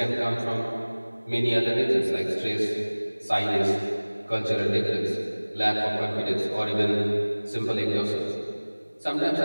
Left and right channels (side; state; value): both; inverted; correlation -1.00